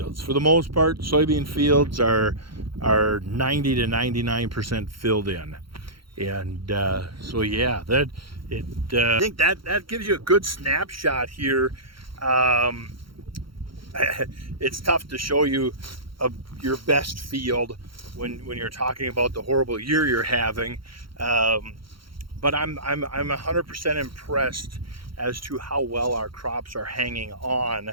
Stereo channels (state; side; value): late; left; 0.73 ms